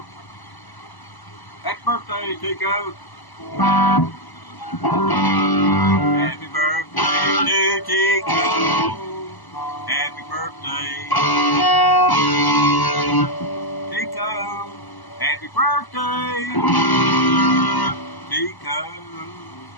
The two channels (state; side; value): late; right; 1.0 ms